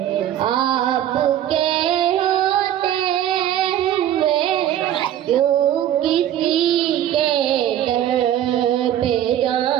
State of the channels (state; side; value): quieter; left; 11.5 dB